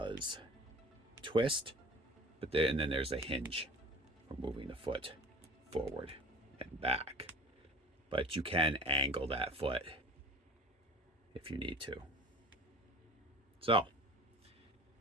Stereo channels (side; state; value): both; normal; correlation 0.42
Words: twist, and then there's a hinge for moving the foot forward and back. But you can angle that foot if you need to. So,